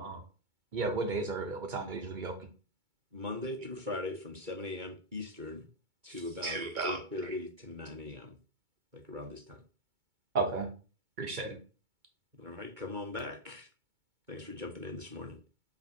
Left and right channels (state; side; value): late; left; 2.2 ms